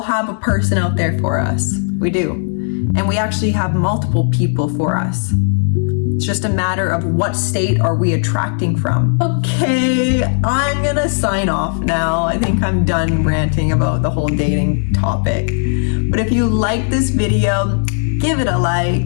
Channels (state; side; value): silent; right; 69 dB below the other